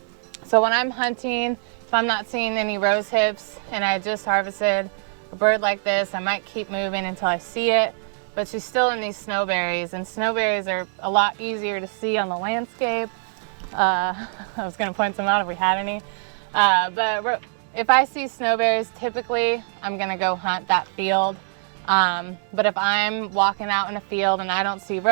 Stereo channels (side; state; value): left; silent; 63 dB below the other